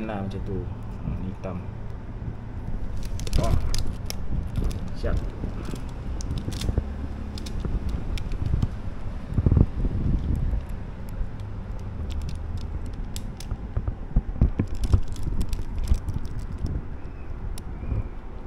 lah macam tu. Ni hitam. Siap.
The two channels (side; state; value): both; identical; correlation 1.00